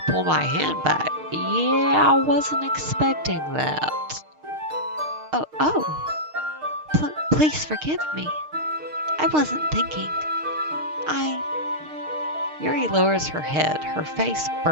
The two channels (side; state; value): left; late; 6.5 ms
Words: pull my hand back. Yeah, I wasn't expecting that. Oh, please forgive me. I wasn't thinking. Yuri lowers her head, her face